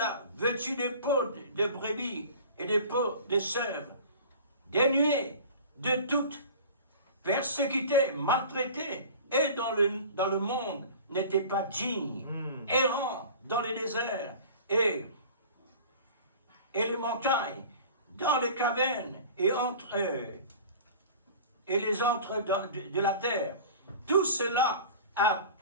vêtus de peaux de brebis et de peaux de chèvres, dénués de toute persécutés, maltraités, et dans le monde n'étaient pas dignes, errants dans les déserts et les montagnes, dans les cavernes et les entres de la terre. Tout cela a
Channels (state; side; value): inverted; both; correlation -0.40